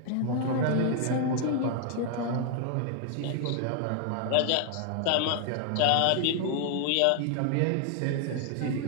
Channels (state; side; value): different; both; correlation 0.00